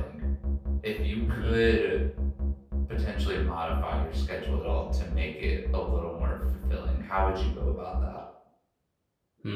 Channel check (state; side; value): identical; both; correlation 1.00